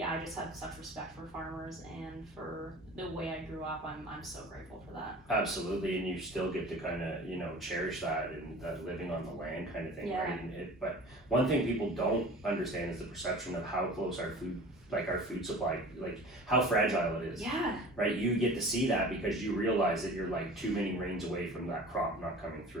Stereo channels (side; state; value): both; normal; correlation 0.41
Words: I just have such respect for farmers and for the way I grew up. I'm so grateful for that. Absolutely, and you still get to kind of cherish that and that living on the land kind of thing, right? But one thing people don't understand is the perception of how close our food supply, how fragile it is. Yeah. Right? You get to see that because you realize that you're too many rains away from that crop not coming